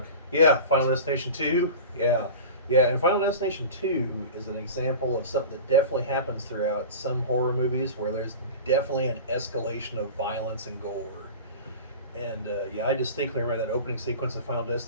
Yeah, Final Destination 2. Yeah, and Final Destination 2 is an example of something that definitely happens throughout some horror movies where there's definitely an escalation of violence and gore. And yeah, I distinctly remember that opening sequence of Final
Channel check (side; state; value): both; inverted; correlation -0.33